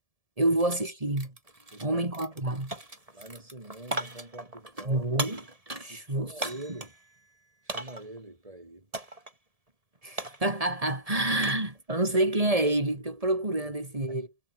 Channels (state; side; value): late; left; 1.7 ms